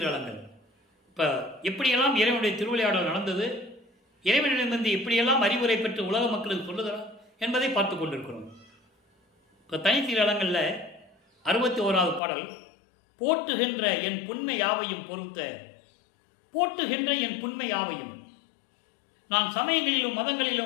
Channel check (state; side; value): drops out; right; at 12.2 s